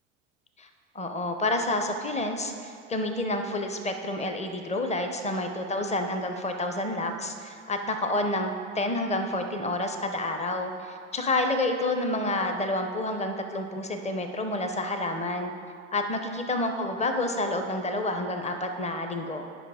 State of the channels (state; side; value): normal; both; correlation 0.06